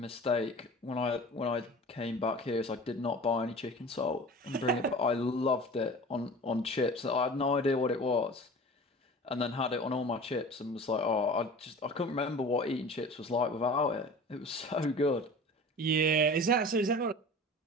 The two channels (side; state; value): both; normal; correlation 0.39